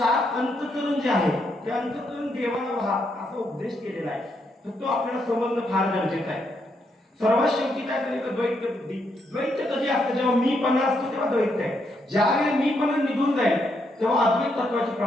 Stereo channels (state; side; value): normal; both; correlation 0.78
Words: अंतःकरण जे आहे ते अंतःकरण देवाला व्हा असा उपदेश केलेला आहे. तर तो आपल्याला समजणं फार गरजेचं आहे. सर्वात शेवटी काय करायचं, द्वैत बुद्धी. द्वैत कधी असतं, जेव्हा मीपणा असतो तेव्हा द्वैत आहे. ज्यावेळी मीपणा निघून जाईल तेव्हा अद्वैत तत्वाची